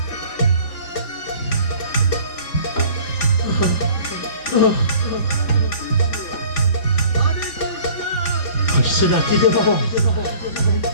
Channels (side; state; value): right; late; 3.4 ms